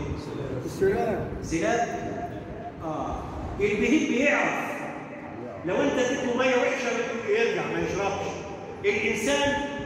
السلام. سلاب. البهيم بيعرف. لو انت اديته ميه وحشه يرجع ما يشربش. الانسان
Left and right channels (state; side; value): identical; both; correlation 1.00